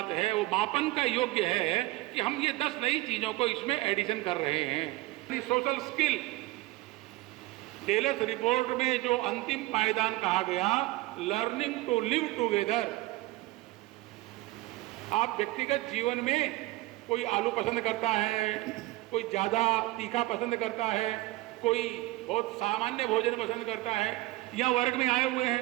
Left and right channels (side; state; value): left; quieter; 19.6 dB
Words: है, वो मापन का योग्य है कि हम ये 10 नई चीजों को इसमें एडिशन कर रहे हैं। सोशल स्किल टेलर्स रिपोर्ट में जो अंतिम पायदान कहा गया, लर्निंग टू लिव टुगेदर। आप व्यक्तिगत जीवन में कोई आलू पसंद करता है, कोई ज्यादा तीखा पसंद करता है, कोई बहुत सामान्य भोजन पसंद करता है, यह वर्ग में आए हुए